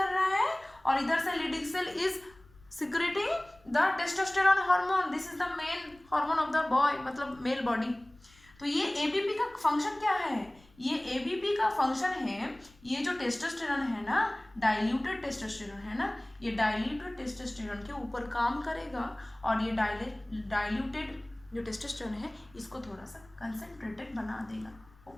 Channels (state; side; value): noise; left; rumble, 27 dB below the sound